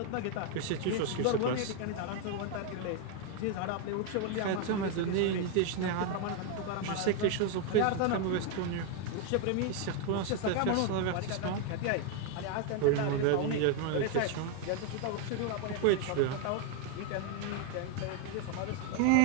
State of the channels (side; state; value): both; different; correlation 0.01